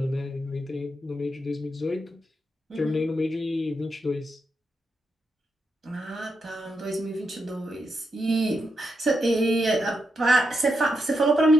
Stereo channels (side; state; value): both; normal; correlation 0.84